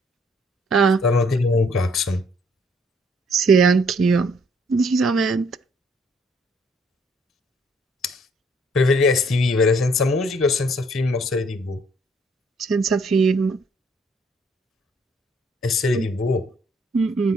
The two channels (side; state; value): both; normal; correlation 0.65